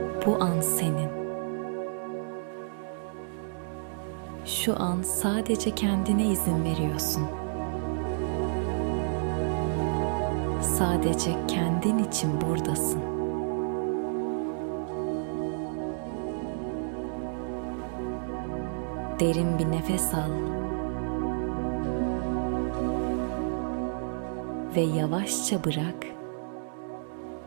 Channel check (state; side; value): silent; left; digital silence